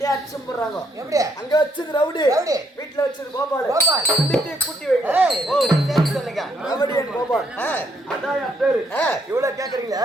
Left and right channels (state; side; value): normal; both; correlation 0.72